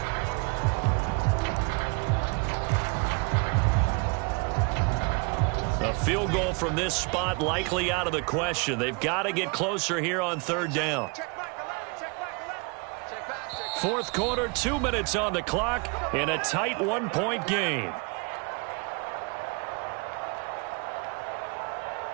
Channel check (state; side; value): quieter; left; 32.2 dB